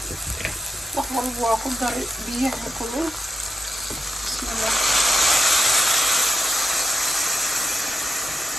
wax walba waa ku dari biyaha kulul. Bismillah.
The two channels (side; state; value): both; normal; correlation 0.86